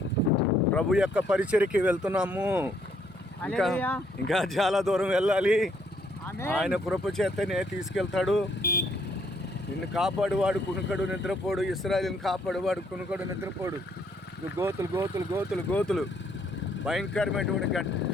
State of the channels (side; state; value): both; normal; correlation 0.69